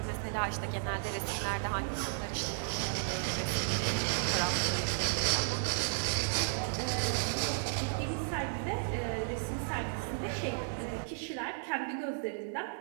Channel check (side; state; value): left; silent; digital silence